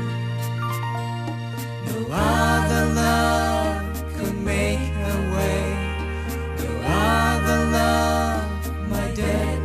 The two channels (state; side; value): identical; both; correlation 1.00